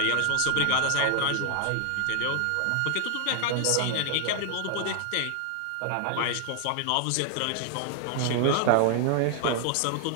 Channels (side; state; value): both; different; correlation 0.00